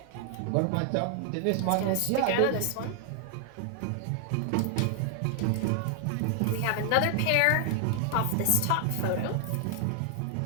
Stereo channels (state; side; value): different; both; correlation 0.00